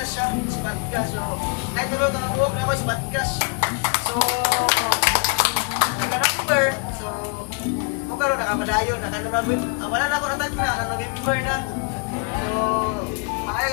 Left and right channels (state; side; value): quieter; right; 35.1 dB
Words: siya, spot cash. So kahit tulog ang buhok na ako, spot cash. So nag-number, so kung karoon nakapadayo, wala na ako natag na, November na. So may